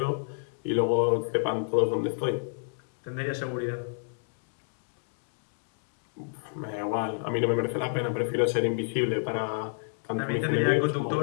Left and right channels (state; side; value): silent; right; digital silence